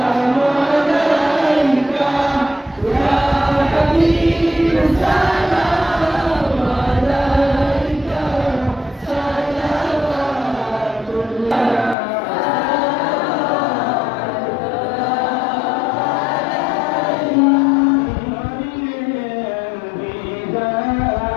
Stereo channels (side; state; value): right; drops out; at 12.0 s